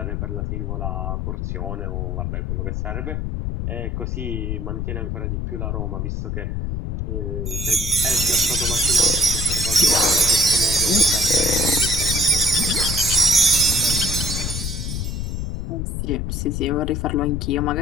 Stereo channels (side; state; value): left; noise; rumble, 2 dB below the sound